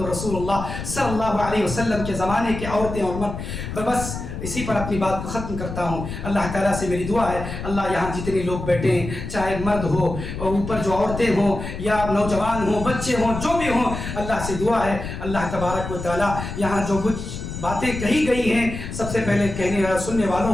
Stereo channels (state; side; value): noise; left; rumble, 7 dB below the sound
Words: رسول اللہ صلی اللہ علیہ وسلم کے زمانے کے عورتیں اور مرد۔ بس اسی پر اپنی بات کو ختم کرتا ہوں۔ اللہ تعالیٰ سے میری دعا ہے، اللہ یہاں جتنے لوگ بیٹھے ہیں، چاہے مرد ہو اور اوپر جو عورتیں ہوں یا نوجوان ہوں، بچے ہوں، جو بھی ہوں، اللہ سے دعا ہے اللہ تبارک و تعالیٰ یہاں جو کچھ باتیں کہی گئی ہیں، سب سے پہلے کہنے اور سننے